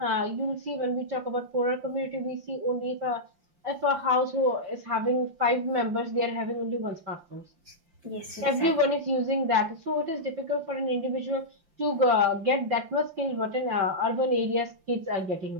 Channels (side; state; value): left; late; 5.8 ms